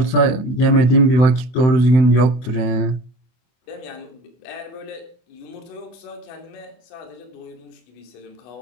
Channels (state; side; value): late; right; 24 ms